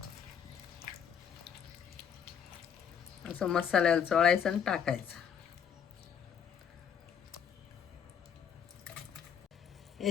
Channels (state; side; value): quieter; right; 7.8 dB